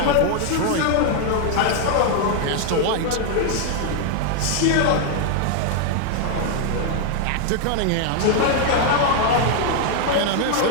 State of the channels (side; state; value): both; different; correlation 0.00